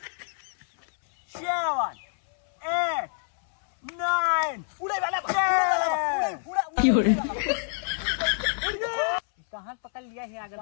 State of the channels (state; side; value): silent; right; 60 dB below the other